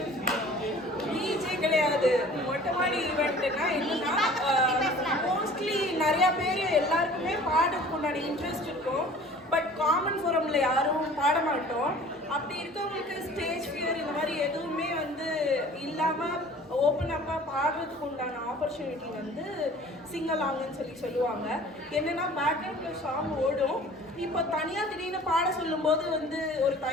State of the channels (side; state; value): both; normal; correlation 0.47